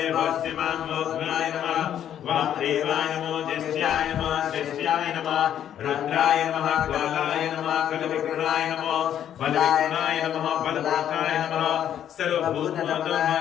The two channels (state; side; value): quieter; right; 10.1 dB